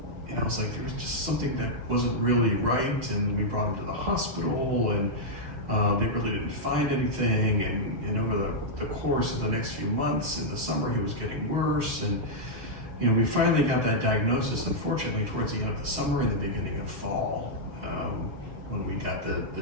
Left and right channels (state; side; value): late; left; 6.4 ms